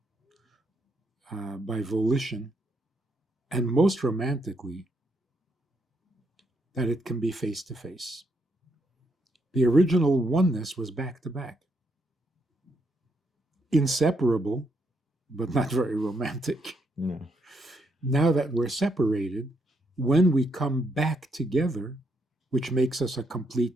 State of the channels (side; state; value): both; normal; correlation 0.76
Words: by volition, and most romantically, that it can be face to face. The original oneness was back to back, inseparable, but not very romantic. No. Now that we're separated, when we come back together, which makes us a complete